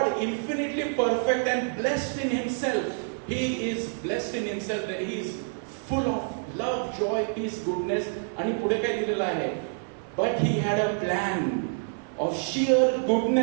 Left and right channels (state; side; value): silent; left; 60 dB below the other